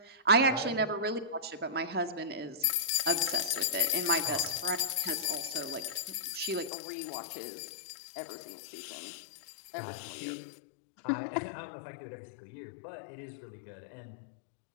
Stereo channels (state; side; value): drops out; right; at 6.7 s